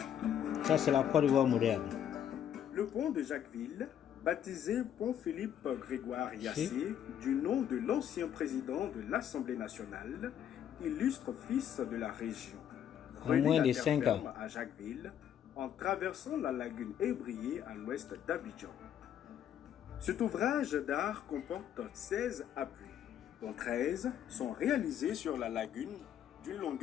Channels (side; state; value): right; quieter; 9.7 dB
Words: Ça, c'est la Côte d'Ivoire moderne. Le pont de Jacquesville, baptisé pont Philippe Grégoire Yassé, du nom de l'ancien président de l'Assemblée nationale, illustre fils de la région. En moins de 5 ans. À Jacquesville, en traversant la lagune Ébrié à l'ouest d'Abidjan. Cet ouvrage d'art comporte 16 appuis, dont 13 sont réalisés sur la lagune d'une